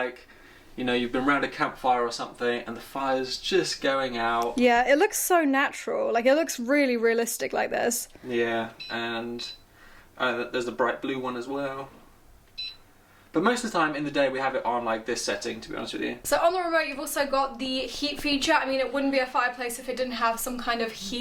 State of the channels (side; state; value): both; identical; correlation 1.00